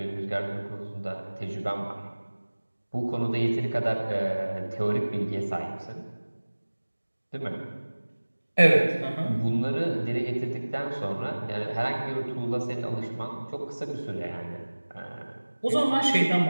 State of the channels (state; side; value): inverted; both; correlation -1.00